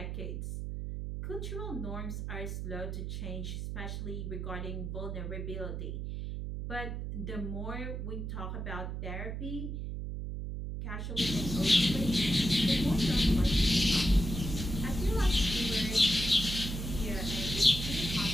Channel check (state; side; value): noise; right; hum, 4 dB below the sound